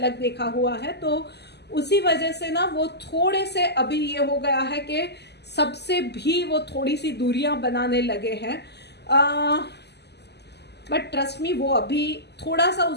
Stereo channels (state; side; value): late; right; 0.49 ms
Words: देखा हुआ है, तो उसी वजह से ना वो थोड़े से अभी ये हो गया है कि सबसे भी वो थोड़ी सी दूरियां बनाने लगे हैं। बट ट्रस्ट मी वो अभी थोड़ा सा